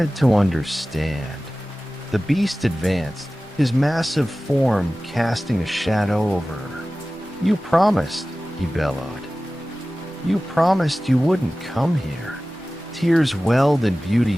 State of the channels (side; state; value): both; normal; correlation 0.97